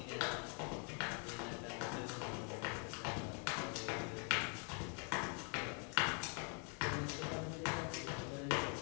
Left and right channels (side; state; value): right; quieter; 38.9 dB